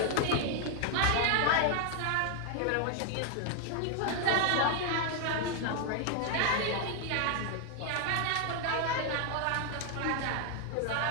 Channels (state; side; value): different; both; correlation 0.00